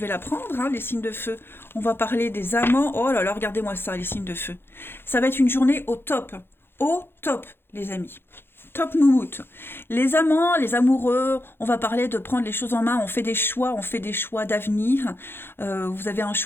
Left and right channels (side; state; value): right; late; 0.11 ms